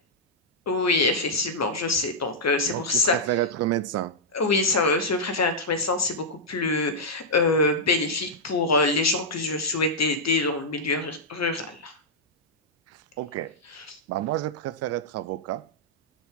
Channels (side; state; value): both; normal; correlation -0.07